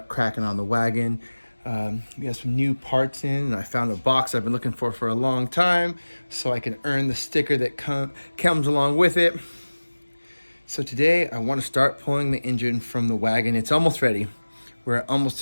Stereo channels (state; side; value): inverted; both; correlation -1.00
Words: cracking on the wagon. We got some new parts in, and I found a box I've been looking for a long time, so I can earn the sticker that comes along with it. So today I want to start pulling the engine from the wagon. It's almost ready. We're almost